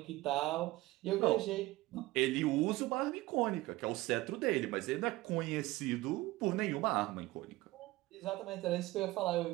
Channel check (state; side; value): quieter; left; 18.9 dB